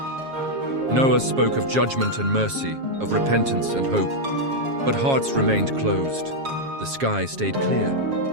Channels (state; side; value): late; left; 7.3 ms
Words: Noah spoke of judgment and mercy, of repentance and hope. But hearts remained closed. The sky stayed clear,